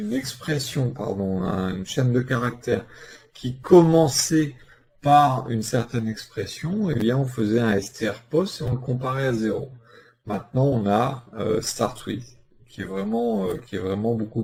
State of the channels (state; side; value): identical; both; correlation 1.00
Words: expression, pardon, une chaîne de caractères qui commençait par une certaine expression, et bien on faisait un strPos et on le comparait à 0. Maintenant on a start with, qui est vraiment beaucoup